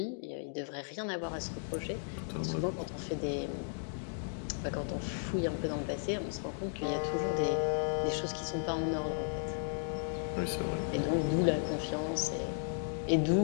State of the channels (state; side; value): silent; right; digital silence